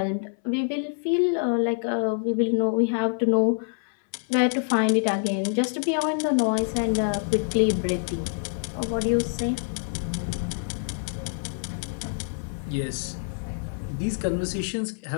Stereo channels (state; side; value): silent; right; 61 dB below the other